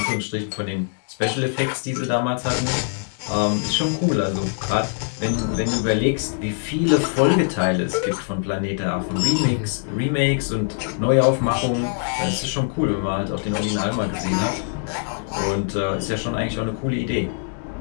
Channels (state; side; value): silent; right; digital silence